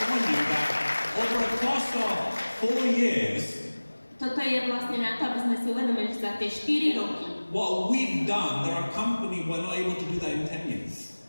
upon you that over the course of 4 years, Toto je vlastne na to, aby sme si uvedomili, že za tie 4 roky what we've done, there are companies who are not able to do that in 10 years.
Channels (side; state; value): both; inverted; correlation -1.00